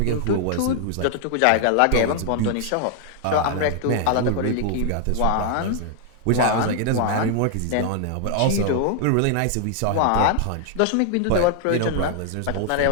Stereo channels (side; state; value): both; different; correlation 0.00